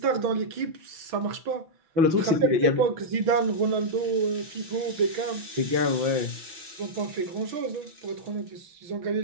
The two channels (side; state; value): left; late; 6.0 ms